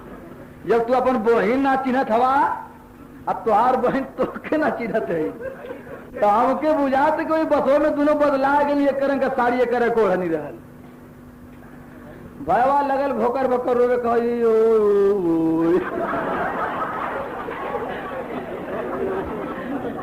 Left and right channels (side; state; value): both; identical; correlation 1.00